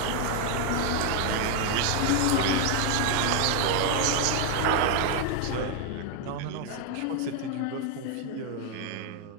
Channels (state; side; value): different; both; correlation 0.01